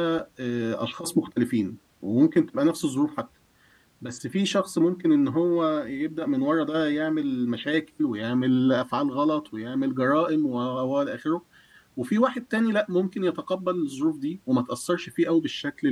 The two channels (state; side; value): identical; both; correlation 1.00